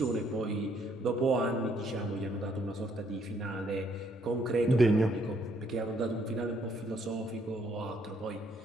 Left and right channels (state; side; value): normal; both; correlation 0.69